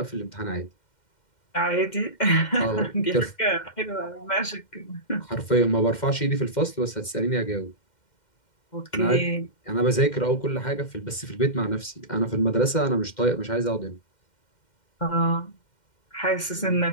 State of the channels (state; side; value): late; right; 2.1 ms